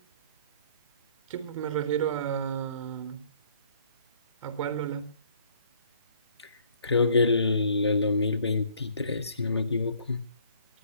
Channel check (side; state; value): both; inverted; correlation -0.59